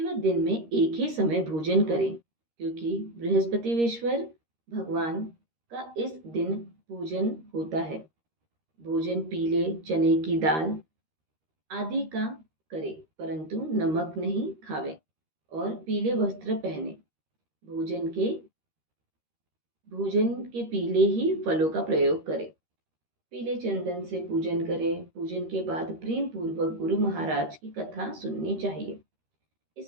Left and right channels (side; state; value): left; late; 13 ms